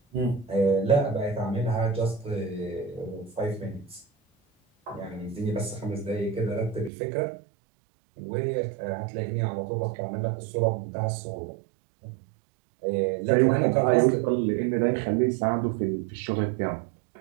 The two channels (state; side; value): drops out; left; at 6.9 s